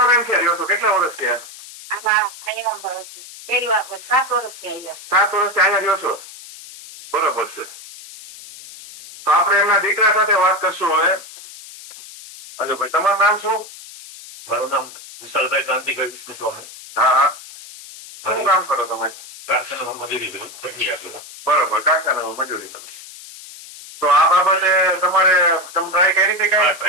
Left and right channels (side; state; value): left; noise; hiss, 16 dB below the sound